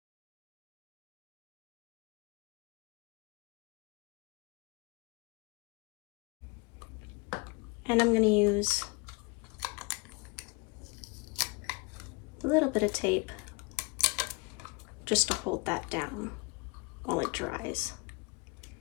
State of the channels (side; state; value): right; quieter; 28.8 dB